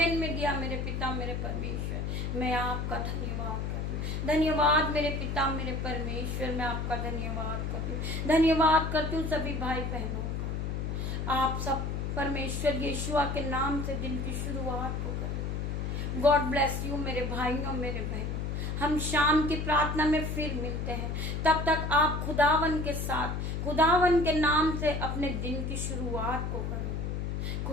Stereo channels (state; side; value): noise; left; hum, 2 dB below the sound